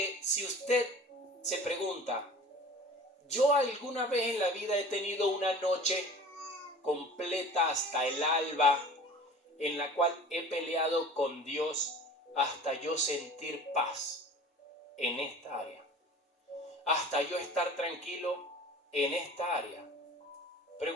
si usted se pregunta, ¿yo alguna vez en la vida he tenido una noche completa hasta el alba en la cual he peleado con Dios hasta yo sentir paz en esta área? Hasta yo estar tranquilo en esta área.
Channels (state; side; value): normal; both; correlation 0.42